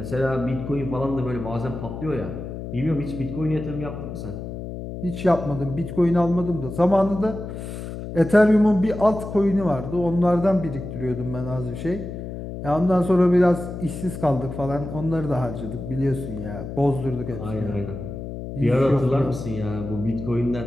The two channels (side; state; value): left; noise; hum, 8 dB below the sound